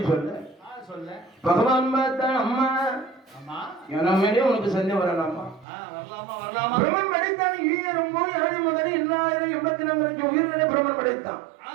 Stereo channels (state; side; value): drops out; left; at 5.7 s